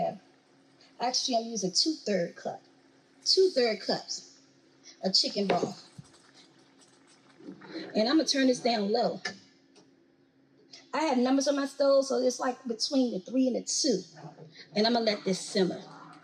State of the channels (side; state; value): both; identical; correlation 1.00